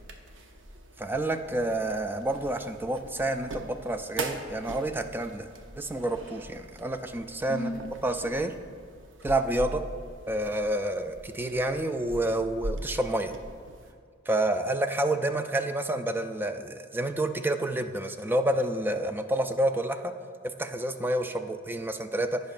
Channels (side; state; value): both; normal; correlation 0.65